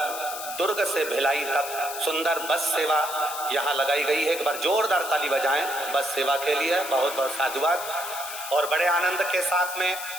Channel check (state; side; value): noise; left; hiss, 9 dB below the sound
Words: दुर्ग से भिलाई तक सुंदर बस सेवा यहाँ लगाई गई है। एक बार जोरदार ताली बजाएं बस सेवा के लिए। बहुत बहुत साधुवाद। और बड़े आनंद के साथ में